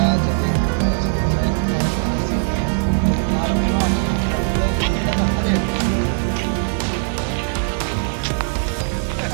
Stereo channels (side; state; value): left; silent; digital silence